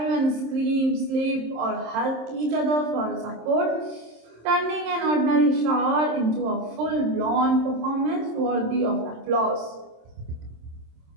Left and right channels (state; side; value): late; left; 26 ms